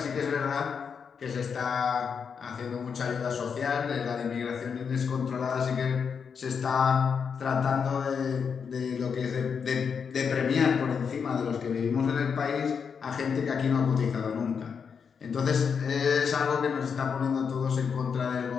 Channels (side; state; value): right; quieter; 6.4 dB